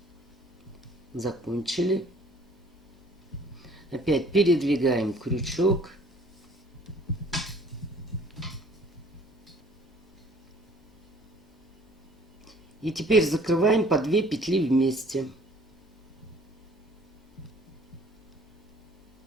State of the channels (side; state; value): both; normal; correlation 0.55